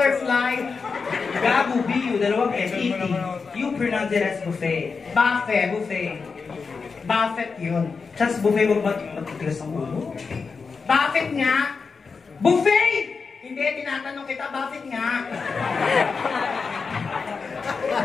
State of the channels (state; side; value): quieter; right; 5.0 dB